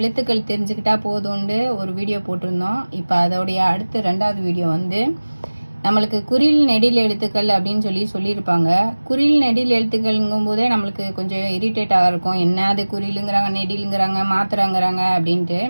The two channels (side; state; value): both; inverted; correlation -1.00